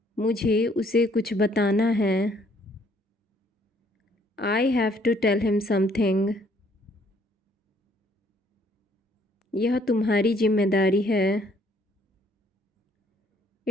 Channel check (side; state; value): both; normal; correlation 0.64